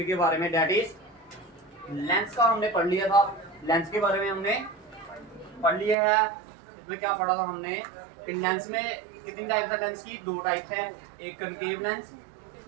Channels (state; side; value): drops out; left; at 6.0 s